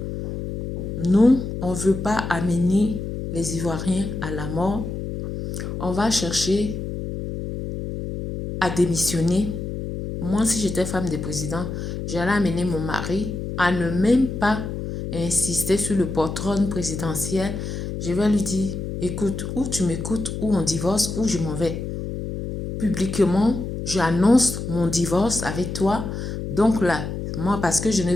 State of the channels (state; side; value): noise; left; hum, 5 dB below the sound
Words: nous, on ne veut pas amener les Ivoiriens à la mort. On va chercher à démissionner. Moi, si j'étais femme de président, j'allais amener mon mari à ne même pas insister sur le patron présidentiel. Je vais lui dire, écoute, ou tu m'écoutes, ou on divorce, ou je m'en vais. Publiquement, j'annonce mon divorce avec toi. Donc là, moi, parce que je ne